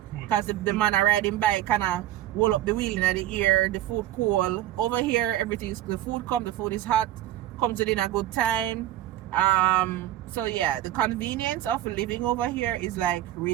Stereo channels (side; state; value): left; quieter; 13.5 dB